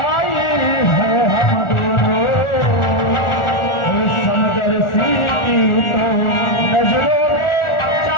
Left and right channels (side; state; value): right; late; 1.4 ms